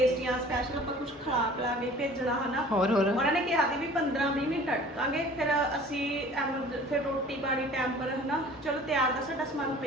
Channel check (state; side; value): normal; both; correlation 0.47